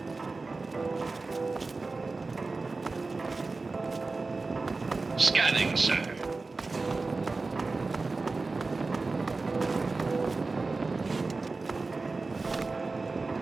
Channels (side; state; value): left; quieter; 3.7 dB